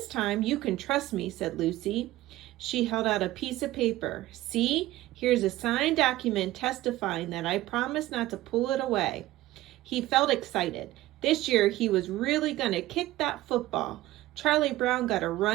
time you can trust me," said Lucy. She held out a piece of paper. "See, here's a signed document testifying that I promised not to pull it away." He felt excited. This year he was really going to kick that football. Charlie Brown got a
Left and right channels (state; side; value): quieter; left; 16.4 dB